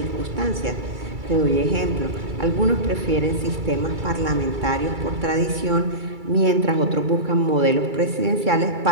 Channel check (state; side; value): late; left; 2.3 ms